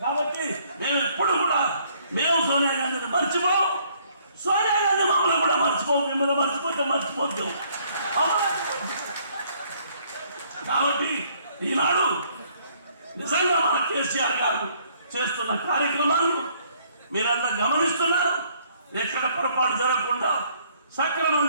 కాబట్టి మేము ఎప్పుడు కూడా మేము సోనియా గాంధీని మర్చిపోం, సోనియా గాంధీ మమ్మల్ని కూడా మర్చిపోం. మిమ్మల్ని మర్చిపోతే మర్చిపోతాం. కాబట్టి ఈనాడు నిజంగా మన కేసీఆర్ గారు చేస్తున్న కార్యక్రమాలు మీరందరూ గమనిస్తున్నారు. ఎక్కడ పొరపాటు జరగకుండా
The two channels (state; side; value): inverted; both; correlation -0.64